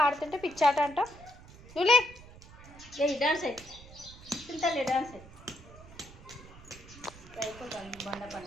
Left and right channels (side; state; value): right; noise; rumble, 19 dB below the sound